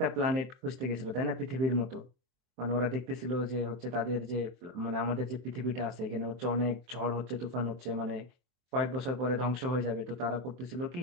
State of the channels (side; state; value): left; late; 23 ms